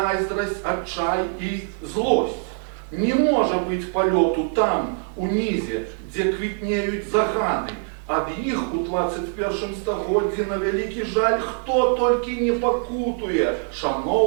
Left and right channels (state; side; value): silent; left; 57 dB below the other